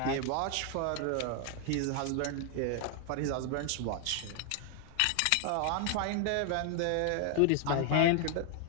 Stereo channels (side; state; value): both; different; correlation 0.00